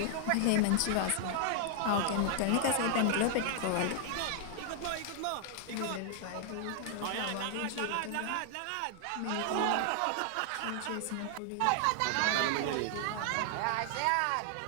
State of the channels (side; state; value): both; different; correlation -0.01